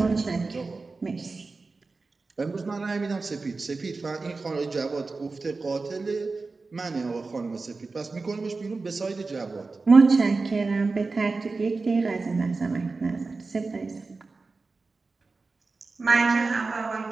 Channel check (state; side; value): quieter; left; 3.9 dB